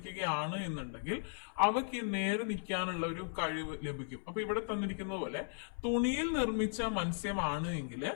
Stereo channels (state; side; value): silent; right; 53 dB below the other